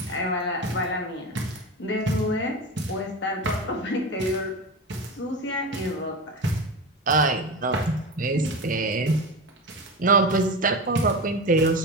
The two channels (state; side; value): normal; both; correlation 0.24